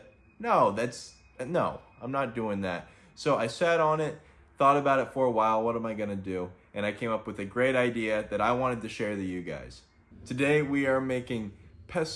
No, I'm not doing that. So I sat on it, thought about it for a while. What am I gonna do? And I came up with a great idea that I wanted to share with you guys. Today we are making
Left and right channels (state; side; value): identical; both; correlation 1.00